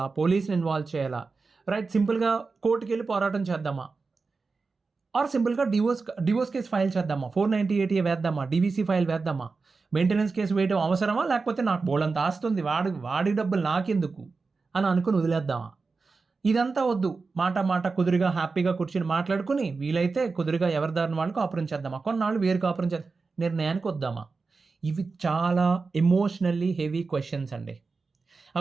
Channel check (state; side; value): quieter; left; 4.3 dB